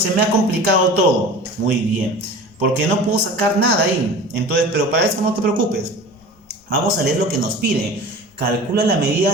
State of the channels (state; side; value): normal; both; correlation 0.37